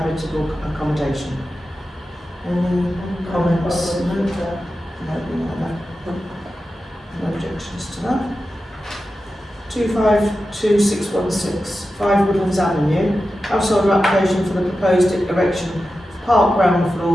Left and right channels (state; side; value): normal; both; correlation 0.92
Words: accommodation. Any comments? No objections to that. 252616 5 Woodlands Avenue. Household application for the proposed erection of park ground